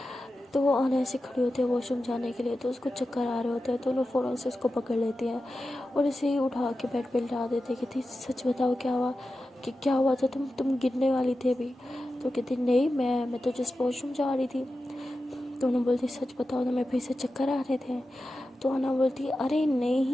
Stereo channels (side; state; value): both; normal; correlation 0.92